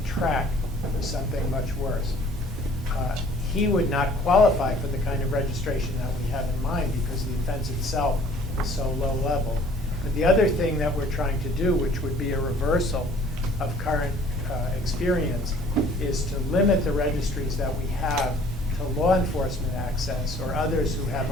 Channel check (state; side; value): normal; both; correlation 0.54